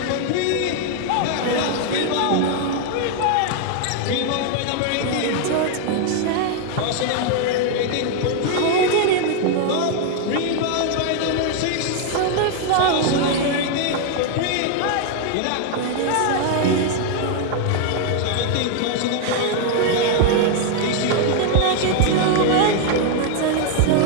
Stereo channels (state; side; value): different; both; correlation 0.00